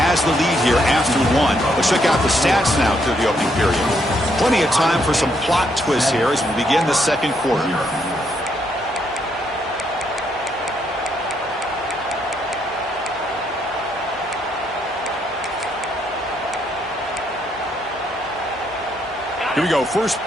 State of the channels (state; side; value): normal; both; correlation 0.74